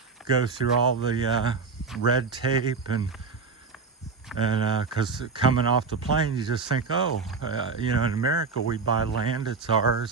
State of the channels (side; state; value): left; quieter; 4.8 dB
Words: go through all the red tape and because coming off the plane you just think, in America we buy land, it's